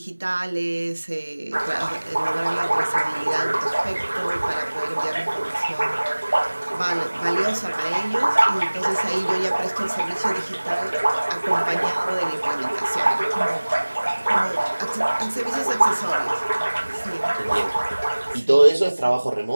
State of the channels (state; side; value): inverted; both; correlation -1.00